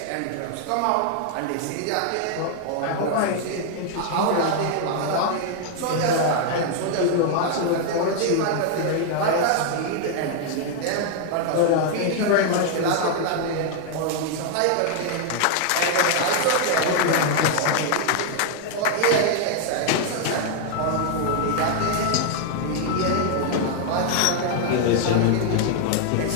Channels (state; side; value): different; both; correlation 0.00